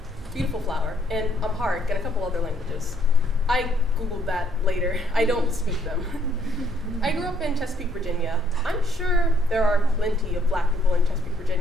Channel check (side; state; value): both; normal; correlation 0.67